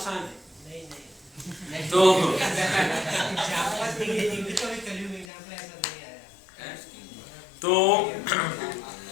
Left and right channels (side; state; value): right; drops out; at 5.2 s